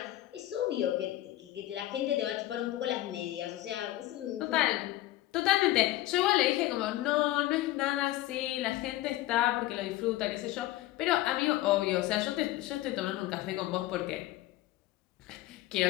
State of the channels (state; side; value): quieter; right; 15.9 dB